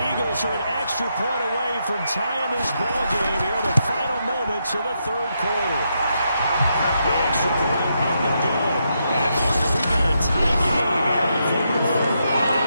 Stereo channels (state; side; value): inverted; both; correlation -0.81